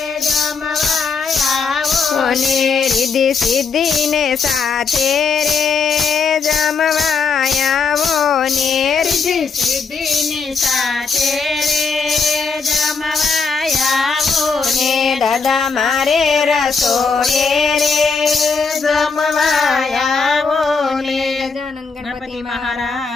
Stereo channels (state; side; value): quieter; right; 5.0 dB